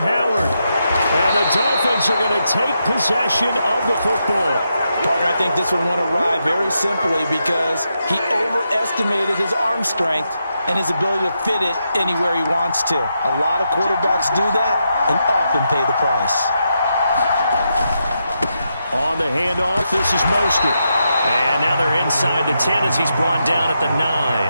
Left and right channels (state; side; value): inverted; both; correlation -0.84